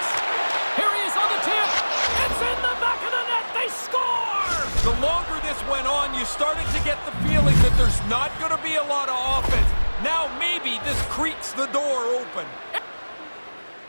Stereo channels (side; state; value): both; inverted; correlation -1.00